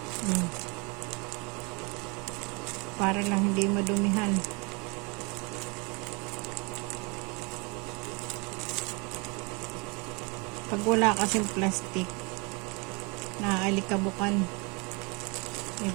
Oh. Para lang hindi madumihan. Pag wala kasing plastic, naaalikabukan, may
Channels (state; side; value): quieter; left; 30.0 dB